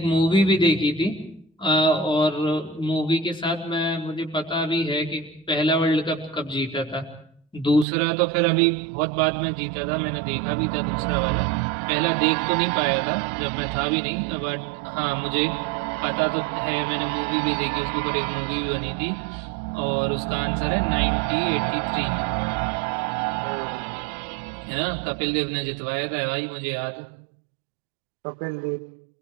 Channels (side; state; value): left; drops out; at 7.9 s